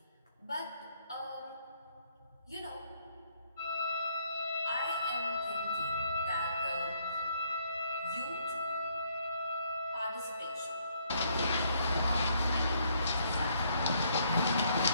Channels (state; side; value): inverted; both; correlation -0.69